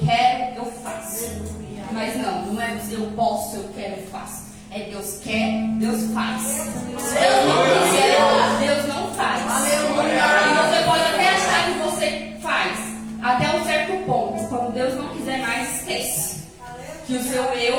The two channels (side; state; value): both; identical; correlation 1.00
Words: eu faço. Mas não é eu posso, eu quero, eu faço. É Deus quer, Deus faz. Se Deus não quiser, Deus não faz. E você pode até achar que você faz, até um certo ponto. Quando Deus não quiser mais, esquece. Que o seu